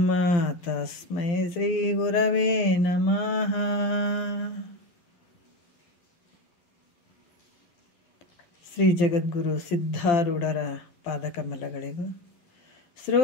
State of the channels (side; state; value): right; late; 12 ms